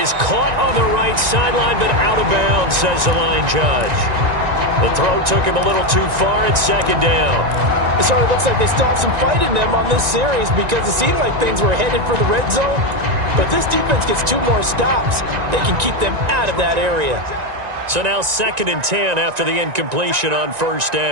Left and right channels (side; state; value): left; late; 1.9 ms